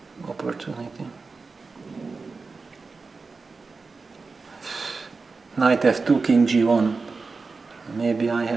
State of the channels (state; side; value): quieter; left; 4.3 dB